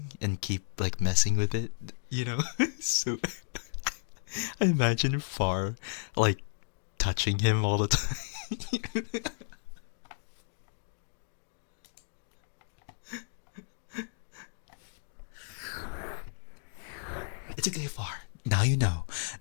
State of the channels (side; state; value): right; silent; digital silence